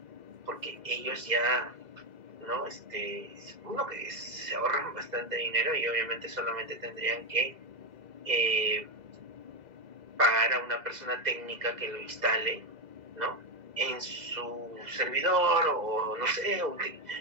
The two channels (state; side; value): late; left; 2.0 ms